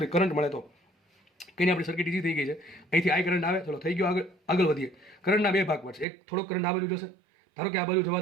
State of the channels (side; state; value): left; drops out; at 6.1 s